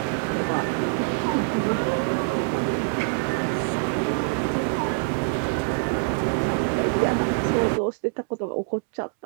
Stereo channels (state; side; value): silent; left; 62 dB below the other